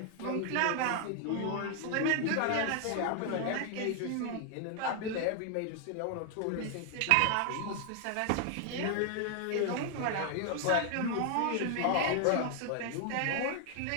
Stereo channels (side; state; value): both; different; correlation 0.00